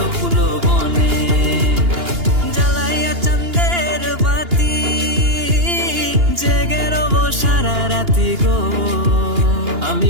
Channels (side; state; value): left; late; 2.8 ms